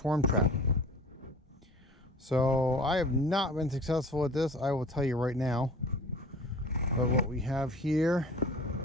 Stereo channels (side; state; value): both; normal; correlation 0.43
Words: trap. So I have not been successful at this, I will tell you right now. But what we have here